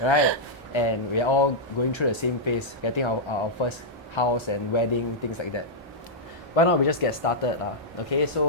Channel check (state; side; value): normal; both; correlation -0.08